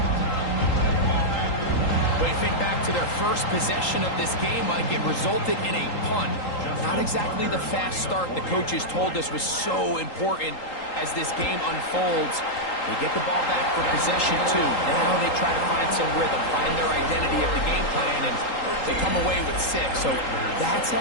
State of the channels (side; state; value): right; late; 3.8 ms